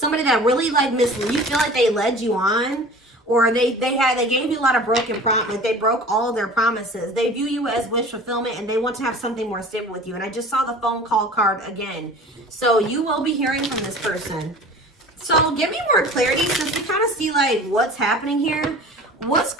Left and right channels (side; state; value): both; normal; correlation 0.41